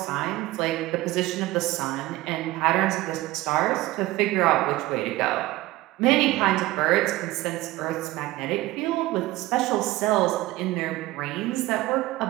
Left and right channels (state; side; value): quieter; left; 18.0 dB